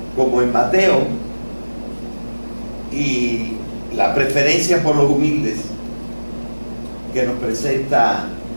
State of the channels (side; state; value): both; inverted; correlation -1.00